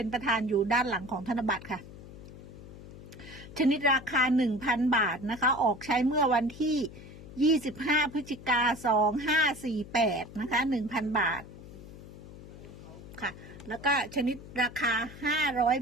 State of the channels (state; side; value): noise; left; hum, 16 dB below the sound